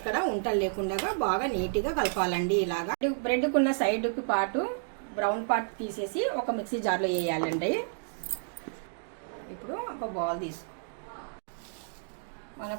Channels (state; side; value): silent; left; digital silence